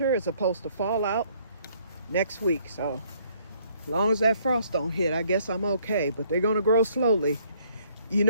is supposed to fall out next week. So as long as that frost don't hit, I guess I'm okay. But they're going to grow slowly. You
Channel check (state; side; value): inverted; both; correlation -0.64